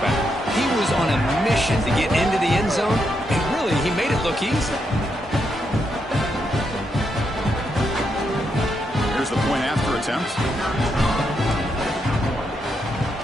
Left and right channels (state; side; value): normal; both; correlation 0.81